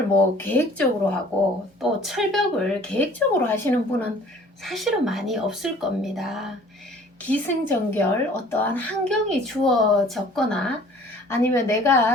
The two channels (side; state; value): both; normal; correlation 0.52